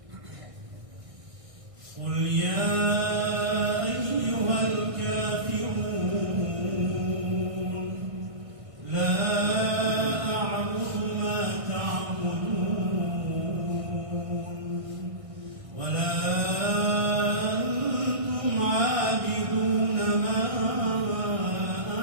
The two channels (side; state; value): left; late; 1.6 ms